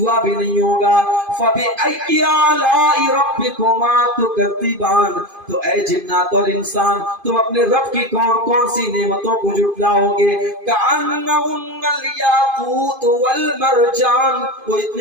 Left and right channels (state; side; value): late; left; 2.5 ms